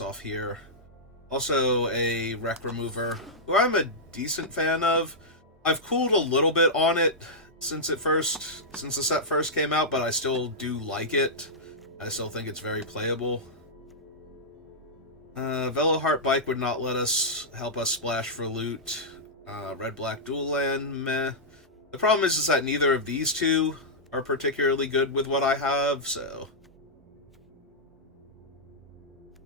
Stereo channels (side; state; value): both; normal; correlation -0.10